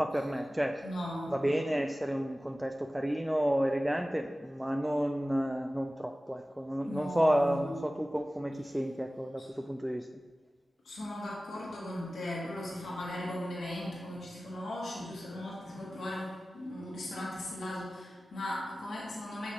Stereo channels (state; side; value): normal; both; correlation 0.96